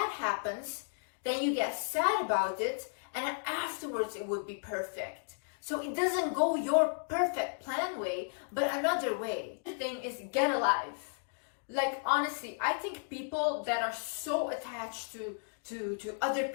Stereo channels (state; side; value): silent; right; digital silence